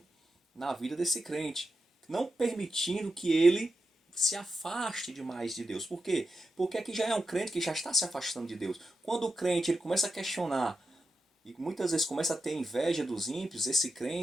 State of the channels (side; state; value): both; normal; correlation 0.89